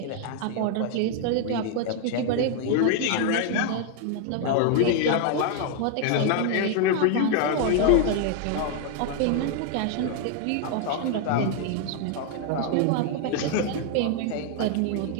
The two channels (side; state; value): both; different; correlation 0.00